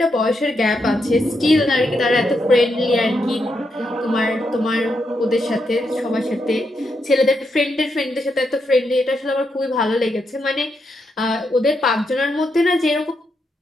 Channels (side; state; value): both; normal; correlation 0.82